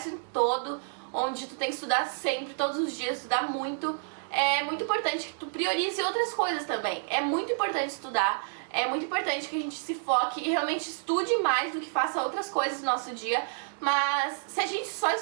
todo, onde tu tem que estudar sempre, todos os dias, estudar muito, é muito importante que tu priorize outras coisas também. É muito importante estudar. É muito importante que a gente se foque e realmente estude mais do que faça outras coisas no nosso dia. Mas se a gente só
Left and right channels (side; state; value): left; silent; digital silence